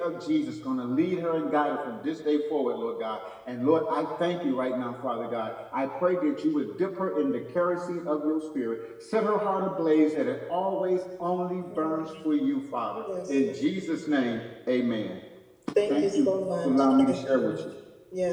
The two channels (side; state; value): both; identical; correlation 1.00